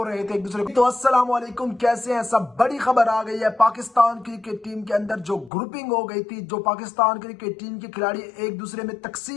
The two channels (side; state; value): right; drops out; at 5.5 s